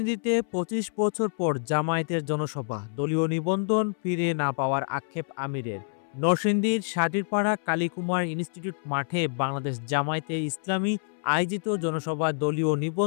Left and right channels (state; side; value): silent; right; 60 dB below the other